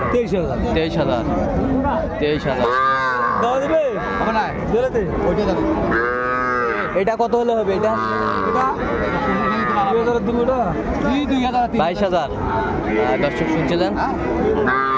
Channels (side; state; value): both; identical; correlation 1.00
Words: 23,000। 23,000। 23,000। দেওয়া দেবে? হবে না, দিলে ওইটাই দাম। এটা কত হলে হবে? এটা 2000 দেবো। ওটা 2000। 22,000। দর্শক শুনছিলেন।